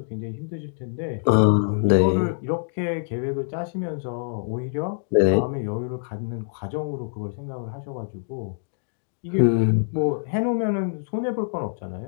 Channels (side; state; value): right; silent; digital silence